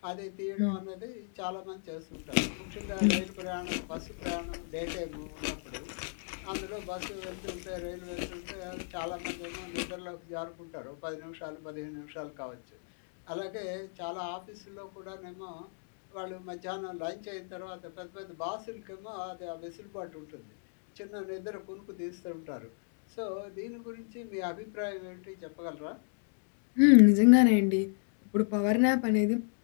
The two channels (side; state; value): right; silent; digital silence